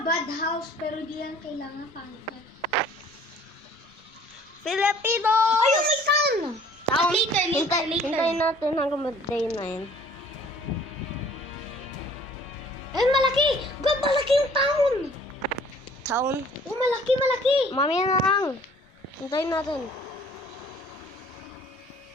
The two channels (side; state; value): both; normal; correlation 0.54